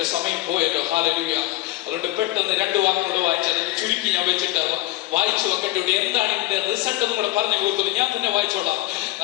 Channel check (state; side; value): quieter; right; 17.4 dB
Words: സമയം പോയല്ലോ. ഹല്ലേലൂയ. അതുകൊണ്ട് പെട്ടെന്ന് 2 വാക്കുകൾ വായിച്ച് അതിന് ചുരുക്കി ഞാൻ വെച്ചിട്ട് വായിച്ചു വെക്കേണ്ടി. എന്താണ് ഇതിന്റെ റിസൾട്ട് എന്ന് കൂടെ പറഞ്ഞു കൊടുക്കുന്നത്? ഞാൻ തന്നെ വായിച്ചോളാം.